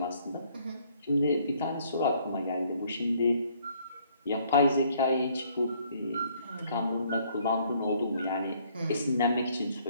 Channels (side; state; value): both; inverted; correlation -0.64